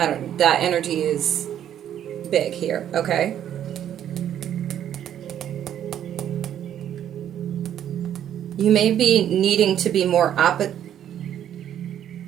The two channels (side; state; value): left; quieter; 10.3 dB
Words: energy is big here, okay? You may be needing to be more opposite,